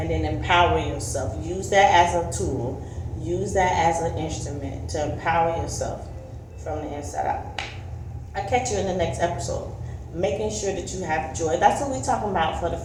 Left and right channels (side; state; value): both; identical; correlation 1.00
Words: then empower yourself. Use that as a tool. Use that as an instrument to empower yourself from the inside out. I'll catch you in the next episode. Making sure that you have joy. That's what we're talking about for the